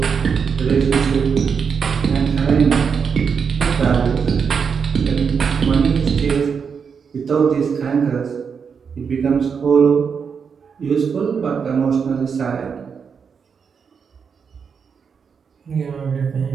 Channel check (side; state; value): left; quieter; 6.3 dB